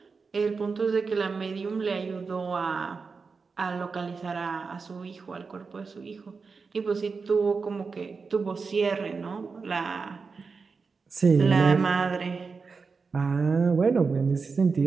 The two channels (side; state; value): left; quieter; 4.8 dB